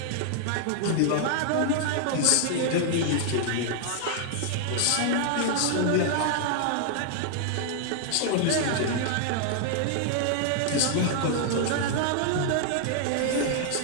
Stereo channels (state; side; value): different; both; correlation 0.00